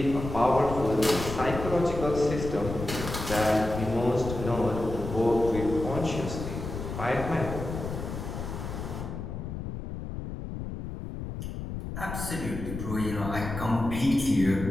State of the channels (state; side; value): noise; left; rumble, 6 dB below the sound